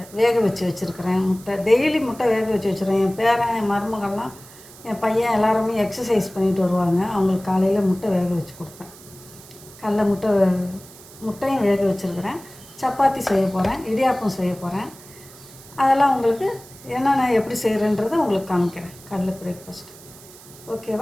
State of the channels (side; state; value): right; noise; hiss, 20 dB below the sound